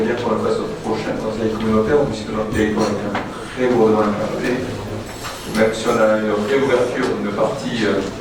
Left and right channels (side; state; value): both; identical; correlation 1.00